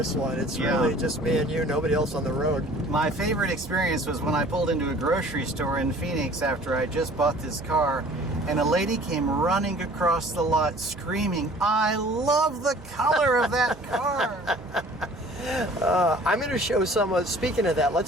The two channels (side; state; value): both; normal; correlation 0.50